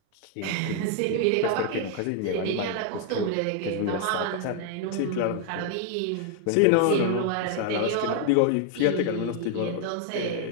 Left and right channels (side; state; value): both; different; correlation 0.00